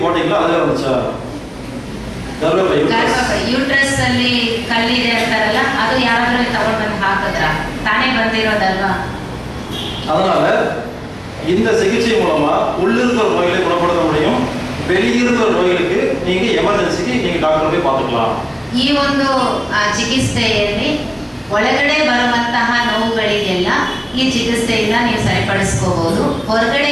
போட்டீங்களா ಅದಲ್ಲ வந்துச்சா? ಗರ್ಭಪೈ ಯೂಟ್ರಸ್ ಅಲ್ಲಿ ಕಲ್ಲಿದೆ ಅಂತಾರಲ್ಲ, ಅದು ಯಾರಾದ್ರೂ ತಗೊಂಡು ಬಂದು ಹಾಕಿದ್ರ? ತಾನೇ ಬಂದಿರೋದಲ್ವಾ? அதனால இந்த சிகிச்சை மூலமா உள்ளிருக்கிற நோய்களை குணப்படுத்த முடியும். வெளியிருக்கிற நோய்களுக்கு நீங்க எமர்ஜென்சிக்கு நீங்க டாக்டர் போய் பார்த்துக்கலாம். ಈ ಒಂದು ಚಿಕಿತ್ಸೆಯಲ್ಲಿ ಒಳಗಡೆ ಬರುವಂತಹ ನೋವುಗಳಿಗೆಲ್ಲ ಈ ಚಿಕಿತ್ಸೆಯಿಂದ ನೀವು ಸರಿಪಡಿಸ್ಕೋಬಹುದು.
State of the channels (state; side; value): identical; both; correlation 1.00